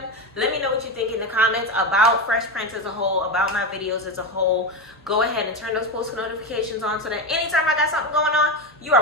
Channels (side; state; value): both; normal; correlation 0.16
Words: Let me know what you think in the comments about Fresh Prince as a whole, about my videos as a whole. Go ahead and turn those post notifications on so that anytime I got something going on, you